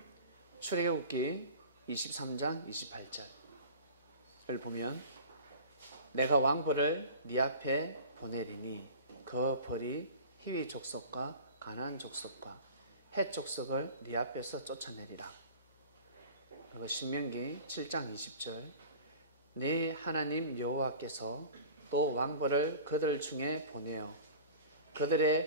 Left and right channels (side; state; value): both; inverted; correlation -0.40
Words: 출애굽기 23장 28절을 보면 내가 왕벌을 네 앞에 보내리니 그 벌이 히위 족속과 가나안 족속과 헷 족속을 네 앞에서 쫓아내리라. 그리고 신명기 7장 20절 네 하나님 여호와께서 또 왕벌을 그들 중에 보내어